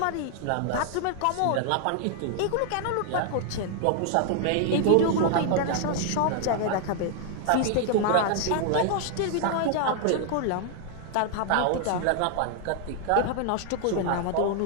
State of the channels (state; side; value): different; both; correlation 0.00